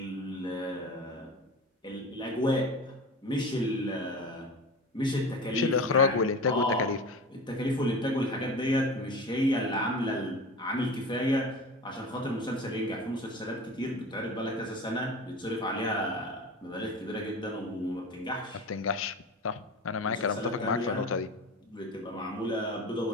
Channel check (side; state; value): both; normal; correlation 0.33